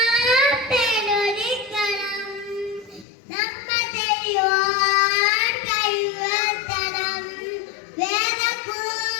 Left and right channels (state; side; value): drops out; right; at 3.1 s